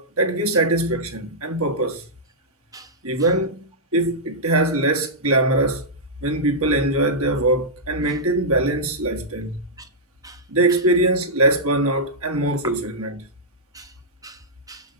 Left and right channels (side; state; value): both; normal; correlation -0.10